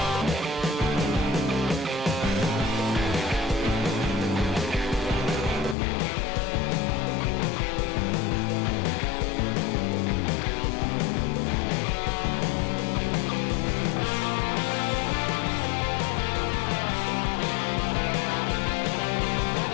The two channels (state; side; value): drops out; right; at 5.8 s